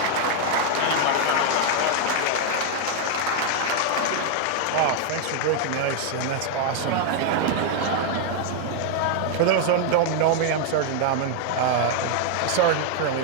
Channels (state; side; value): different; both; correlation 0.00